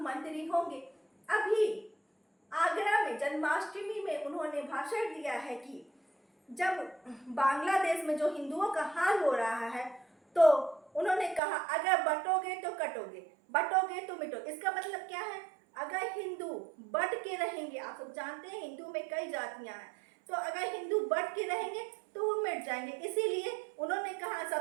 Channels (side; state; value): left; drops out; at 11.4 s